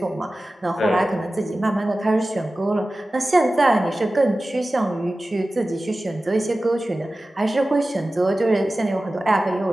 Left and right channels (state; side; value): normal; both; correlation 0.96